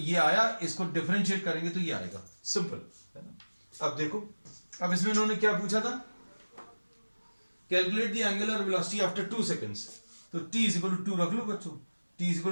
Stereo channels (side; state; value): both; inverted; correlation -1.00